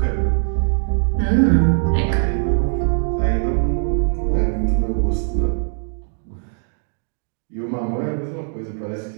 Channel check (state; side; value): silent; left; 65 dB below the other